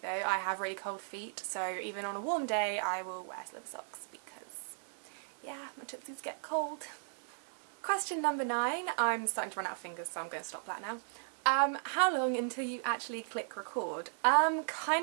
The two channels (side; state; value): left; silent; digital silence